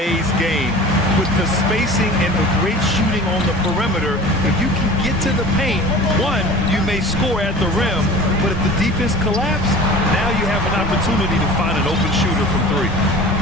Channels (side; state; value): both; normal; correlation 0.40